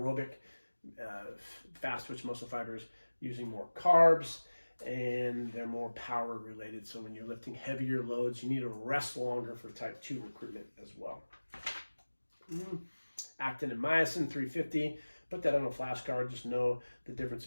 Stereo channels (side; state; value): both; inverted; correlation -1.00